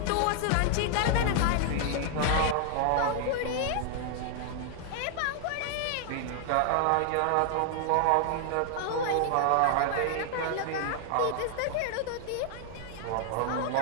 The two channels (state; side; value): different; both; correlation 0.00